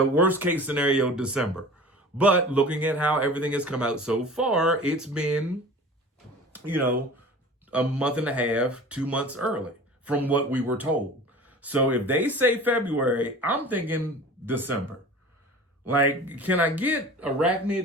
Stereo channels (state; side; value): normal; both; correlation 0.40